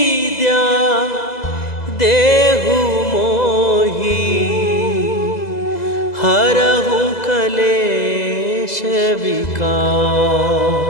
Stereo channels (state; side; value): late; right; 2.0 ms